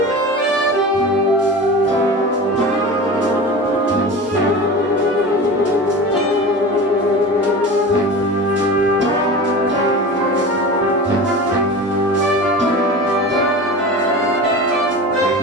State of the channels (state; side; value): normal; both; correlation 0.32